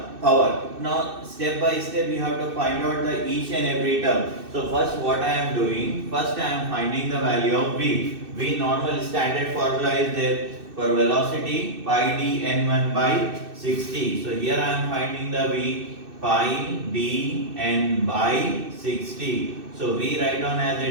power. Now step by step you have to find out the each and every term. So first what I am doing? First I am finding the value of V. V normal standard formula is there for velocity pi d n1 by 60. So here I am finding the V pi d n by 60. So V write down as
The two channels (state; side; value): late; left; 2.6 ms